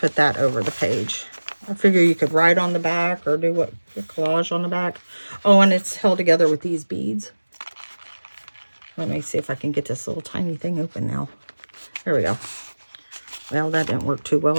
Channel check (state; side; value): inverted; both; correlation -1.00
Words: that over the page. I figure you could write on the back or do a collage on the back. Oh, and it's held together with these beads. Let me see if I can get this little tiny thing open now. There we go. Well, that didn't work too well,